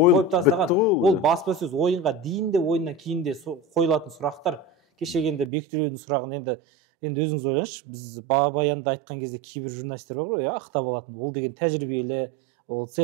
тастаған. Ол баспасөз ойынға дейін де, ойыннан кейін де қойылатын сұрақтар. Кешегенде Бектөлеудің сұрағын енді өзіңіз ойлаңызшы, біз Бабаянда айтқан кезде кейбір журналистер бар ғой, ақтап алатын. Ол деген тәжірибелі, ол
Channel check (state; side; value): drops out; left; at 5.5 s